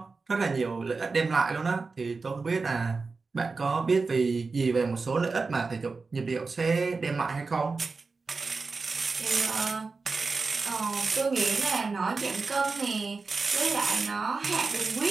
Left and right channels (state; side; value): quieter; left; 4.2 dB